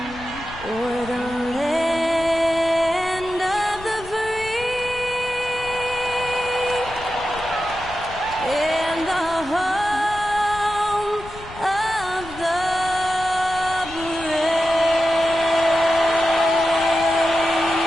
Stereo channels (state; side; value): noise; left; rumble, 16 dB below the sound